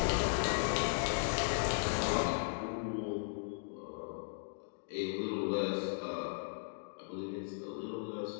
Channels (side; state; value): right; silent; digital silence